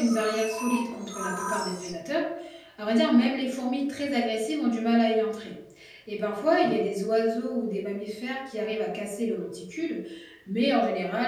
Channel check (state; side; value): identical; both; correlation 1.00